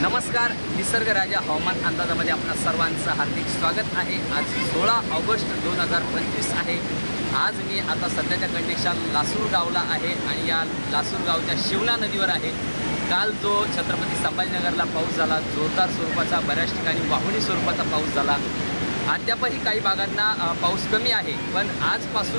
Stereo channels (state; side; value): inverted; both; correlation -1.00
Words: निसर्ग राजा हवामान अंदाजामध्ये आपल्या सर्वांचं हार्दिक स्वागत आहे। आज 16 ऑगस्ट 2025 आहे। आज मी आता सध्याच्या कंडिशन लासूर गावला आहे आणि या लासूर गावच्या शिवना नदीवर आहे। काल जो छत्रपती संभाजीनगरला पाऊस झाला, जोरदार स्वरूपाचा, बऱ्याच ठिकाणी वाहुणी स्वरूपाचा पाऊस झाला। अद्यापही काही भागांना पाऊस कमी आहे, पण